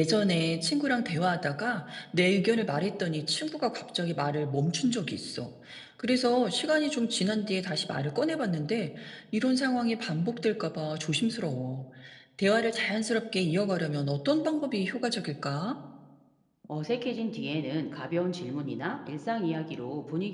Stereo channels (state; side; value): identical; both; correlation 1.00